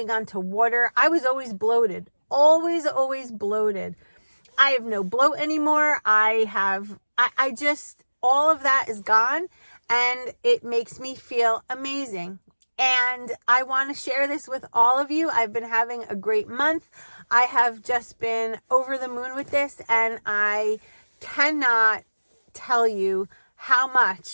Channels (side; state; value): both; inverted; correlation -1.00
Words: on to water. I was always bloated. Always bloated. I have no bloat anymore. I just, all of that is gone, and it makes me feel amazing. And I want to share this with all of you. I've been having a great month. I have just been over the moon with this, and I cannot tell you how